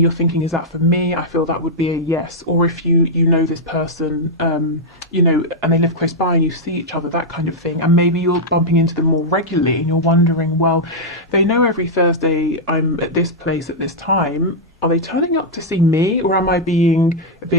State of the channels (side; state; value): both; normal; correlation -0.05